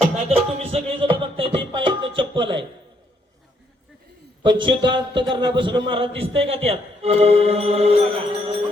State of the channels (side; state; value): both; normal; correlation 0.72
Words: नाहीतर तुम्ही सगळे जण बघताय ते पायात चप्पल आहे पण शुद्ध अंतकरणापासून महाराज दिसतंय का त्यात?